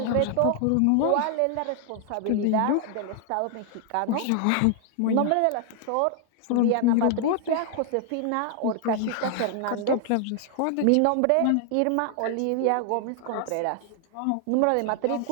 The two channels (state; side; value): different; both; correlation 0.00